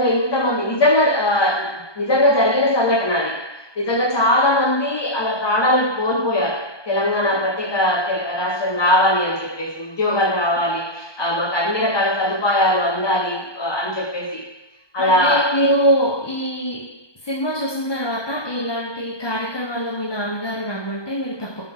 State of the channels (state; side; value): late; right; 1.2 ms